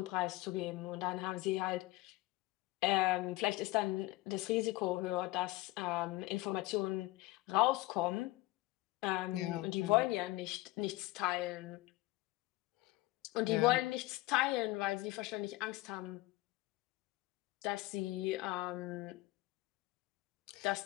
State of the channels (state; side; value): quieter; right; 19.1 dB